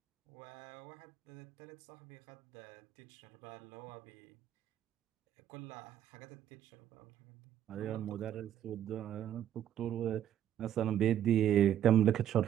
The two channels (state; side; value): quieter; left; 10.8 dB